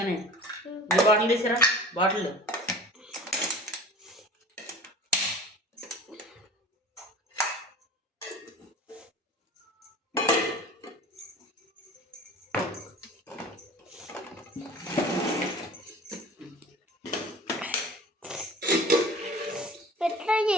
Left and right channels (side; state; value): both; normal; correlation 0.42